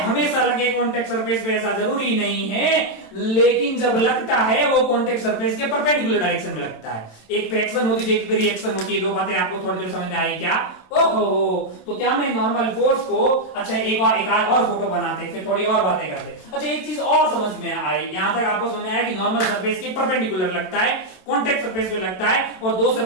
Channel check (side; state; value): right; late; 27 ms